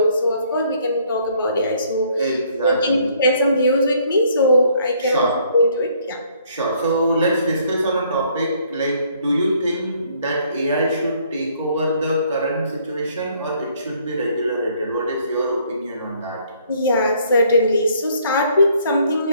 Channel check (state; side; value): inverted; both; correlation -0.64